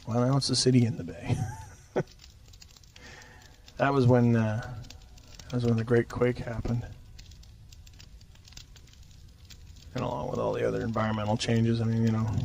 Well, now it's the city in the bay. That was when the Great Quake happened, and along with all the other environmental changes. I mean, the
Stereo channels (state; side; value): identical; both; correlation 1.00